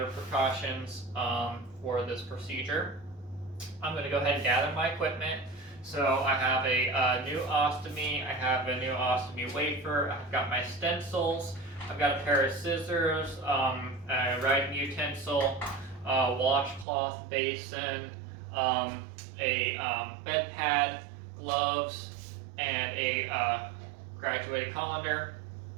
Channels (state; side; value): drops out; left; at 16.9 s